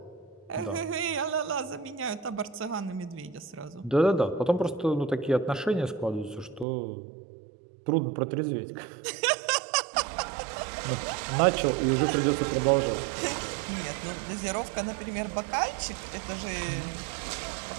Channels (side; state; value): left; drops out; at 6.7 s